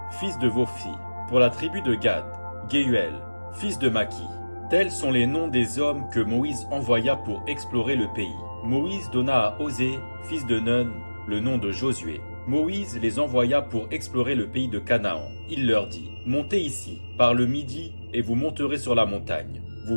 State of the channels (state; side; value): inverted; both; correlation -1.00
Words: fils de Vophi. Pour la tribu de Gad, Gehuel, fils de Maki. Tels sont les noms des hommes que Moïse envoya pour explorer le pays. Moïse donna à Osée, fils de Nun, le nom de Josué. Moïse les envoya pour explorer le pays de Canaan. Il leur dit : Montez ici, par le midi, et vous monterez sur la montagne.